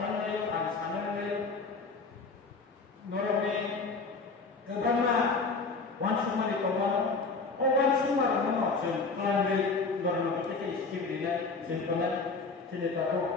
kan sanannya norme kebana wansuma di kawan oh wansuma no jen kelambi norme kita iskim dina jentolan sini tahu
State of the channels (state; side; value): quieter; right; 4.1 dB